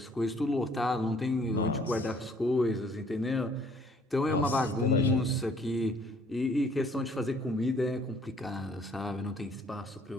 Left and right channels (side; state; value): both; normal; correlation 0.59